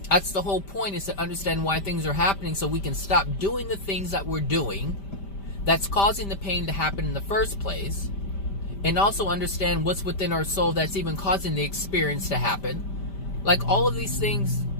That's the whole point, is to understand why things are happening so we can stop doing the things that we're doing that's causing the pain to happen in the first place, and also understand what's within our soul that's even causing the experience to happen. Like all of these things,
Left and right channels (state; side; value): late; right; 5.1 ms